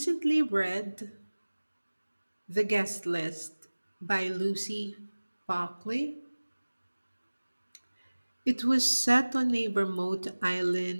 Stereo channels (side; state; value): both; inverted; correlation -1.00